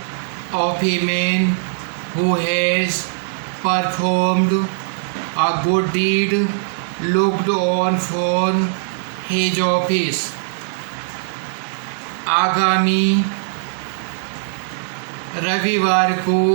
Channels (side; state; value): left; silent; 66 dB below the other